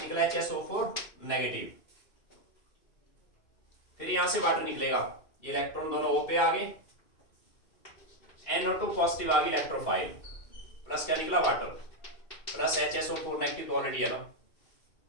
HSO4 नेगेटिव। फिर यहां से वाटर निकलेगा, ये इलेक्ट्रॉन दोनों O पे आ गए, NO2 पॉजिटिव आ गई इलेक्ट्रोफाइल, प्लस क्या निकला? वाटर, प्लस HSO4 नेगेटिव तो ऑलरेडी है ना,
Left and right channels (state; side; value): late; right; 2.6 ms